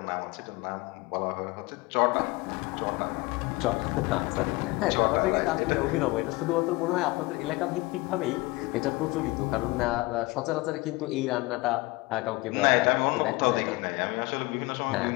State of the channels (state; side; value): quieter; right; 22.9 dB